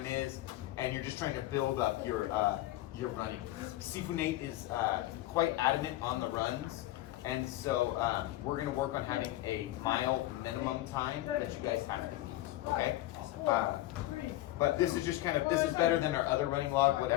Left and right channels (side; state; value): right; quieter; 16.1 dB